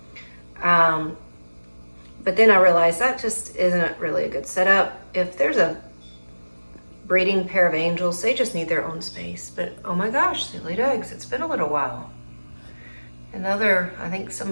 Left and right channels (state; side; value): inverted; both; correlation -1.00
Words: But then I realized that just isn't really a good setup. If there's a breeding pair of angels, they just need their own space. But oh my gosh, they laid eggs. It's been a little while. Another, I think